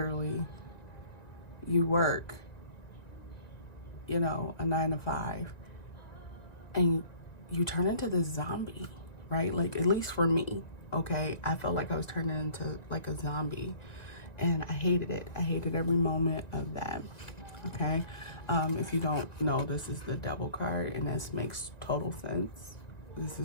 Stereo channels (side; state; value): right; late; 1.9 ms